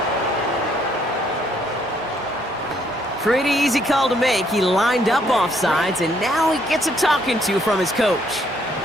Pretty easy call to make. He lined up offsides, and now he gets a talking to from his coach.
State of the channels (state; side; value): normal; both; correlation 0.69